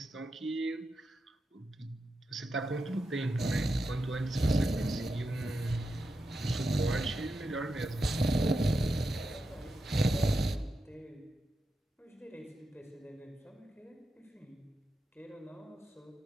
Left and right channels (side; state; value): both; normal; correlation 0.88